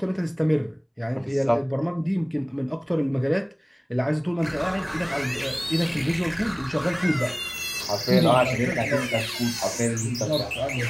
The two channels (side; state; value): both; identical; correlation 1.00